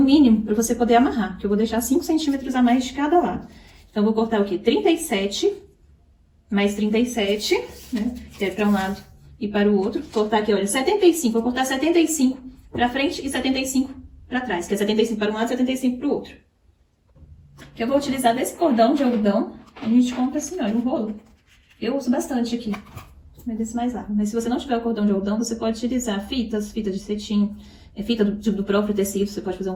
mínimo, para você poder amarrar. Que eu vou deixar 5 centímetros a mais de cada lado. Então, eu vou cortar o quê? 37, mais 37, né? Que é para um lado e para o outro. Vou cortar aqui, olha, 75. Vou cortar 75 para frente e 75 para trás. Que é 75 para um lado e 75 para o outro. Que eu vou utilizar desse cordão de algodão. A gente compra assim, olha, um rolo. Eu uso bastante aqui. Mas desse mais largo. Mas se você não tiver o cordão de algodão, você pode utilizar fitas de cetim, fita do próprio tecido. Você pode fazer um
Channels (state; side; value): identical; both; correlation 1.00